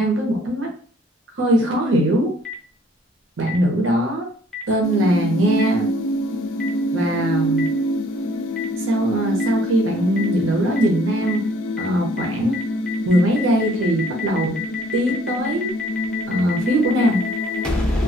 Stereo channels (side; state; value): both; normal; correlation 0.60